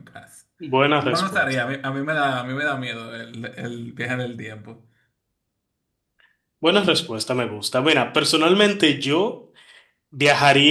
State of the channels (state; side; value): identical; both; correlation 1.00